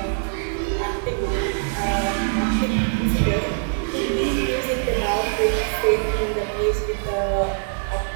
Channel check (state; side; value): silent; left; digital silence